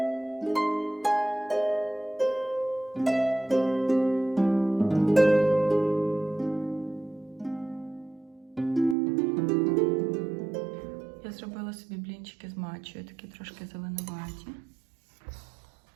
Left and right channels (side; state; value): left; drops out; at 9.0 s